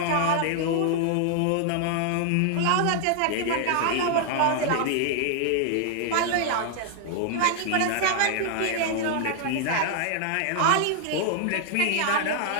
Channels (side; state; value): both; different; correlation 0.00